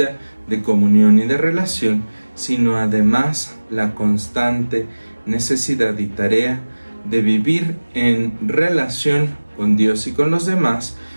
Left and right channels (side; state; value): both; inverted; correlation -1.00